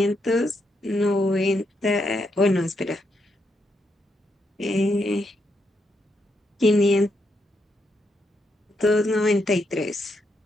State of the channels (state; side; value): normal; both; correlation 0.79